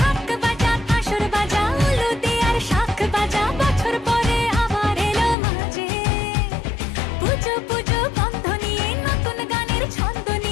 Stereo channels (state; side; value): drops out; right; at 5.4 s